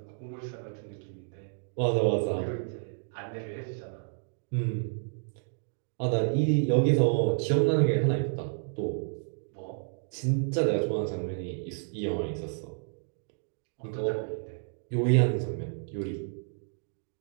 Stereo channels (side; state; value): left; silent; digital silence